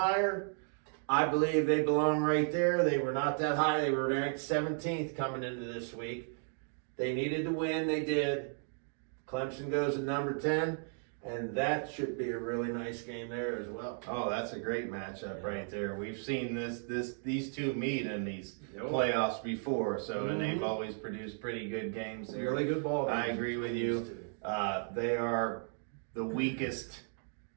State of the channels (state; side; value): silent; left; 55 dB below the other